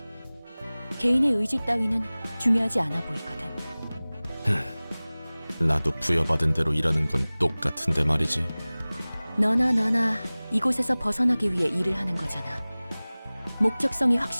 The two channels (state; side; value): inverted; both; correlation -0.99